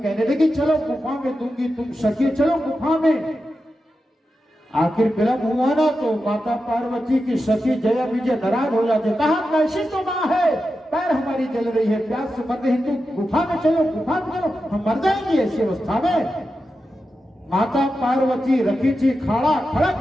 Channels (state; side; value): normal; both; correlation 0.90